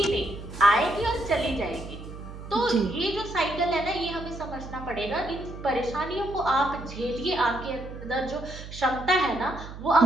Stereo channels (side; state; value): right; noise; hum, 12 dB below the sound